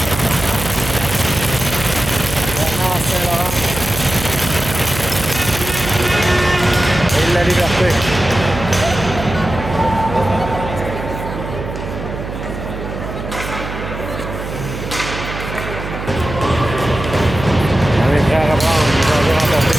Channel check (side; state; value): right; noise; hum, 8 dB below the sound